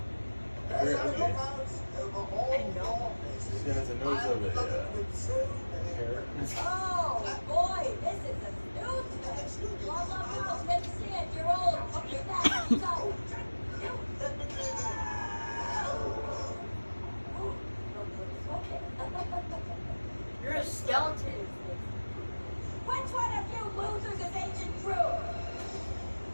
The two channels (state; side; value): inverted; both; correlation -1.00